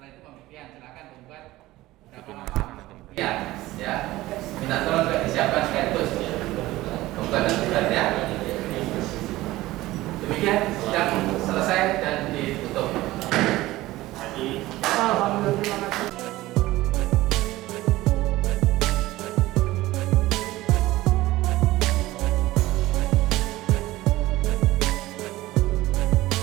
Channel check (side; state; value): left; quieter; 17.5 dB